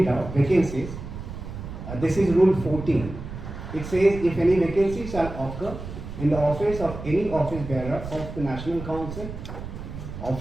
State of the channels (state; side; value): noise; right; rumble, 10 dB below the sound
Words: out, vacancies. This is rule 14. It says if any vacancy shall occur in the office of any office bearer of the National Council,